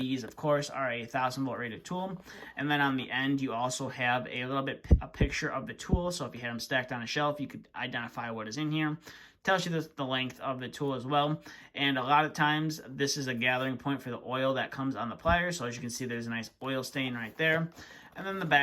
of course, are a 1000-volt rated tool. And then on the end, you also have a picture of the tool. So if you had them stacked on a shelf, you could identify what is in here. Tells you the length of the tool as well. And a lot of times, this is a gathering point for the oil that comes on the pliers. So as you can see, there's a nice oil stain right there. And then the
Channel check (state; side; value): identical; both; correlation 1.00